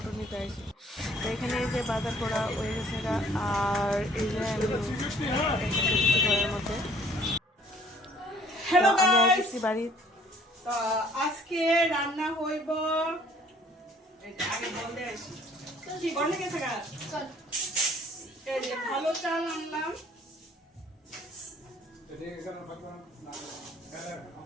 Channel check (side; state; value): both; normal; correlation 0.57